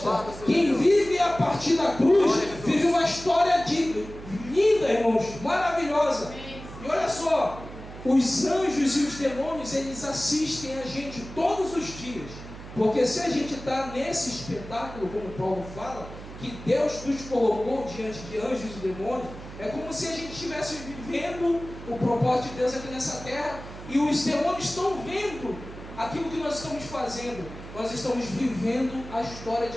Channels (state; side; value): noise; right; hum, 14 dB below the sound